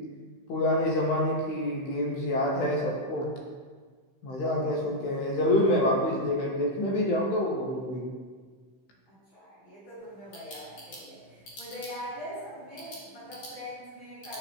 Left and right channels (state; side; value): late; right; 15 ms